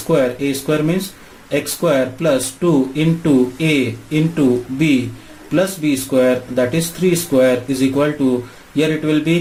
means x square plus 2 into A into B plus B square, that is 3 square, is equal to, here it will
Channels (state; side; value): identical; both; correlation 1.00